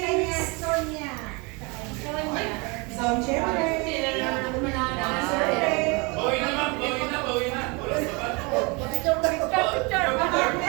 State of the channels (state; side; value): quieter; left; 29.1 dB